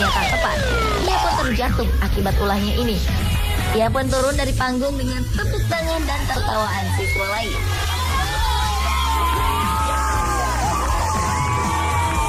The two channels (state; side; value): identical; both; correlation 1.00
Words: tak tepat. Ia pun terjatuh akibat ulahnya ini. Ia pun turun dari panggung dengan tepuk tangan dan tertawaan siswa lain.